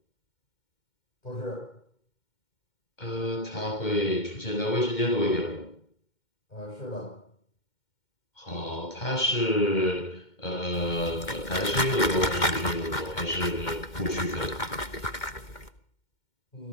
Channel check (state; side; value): late; right; 2.1 ms